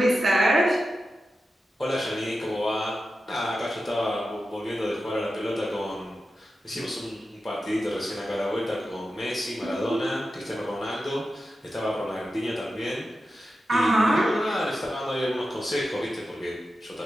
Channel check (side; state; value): both; normal; correlation 0.91